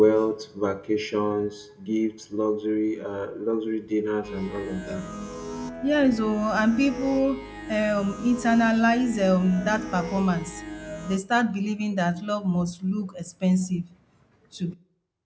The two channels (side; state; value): both; identical; correlation 1.00